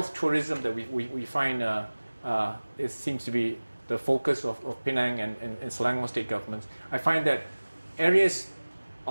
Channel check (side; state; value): both; inverted; correlation -1.00